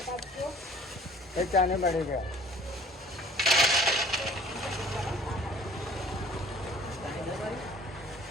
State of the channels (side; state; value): both; normal; correlation 0.50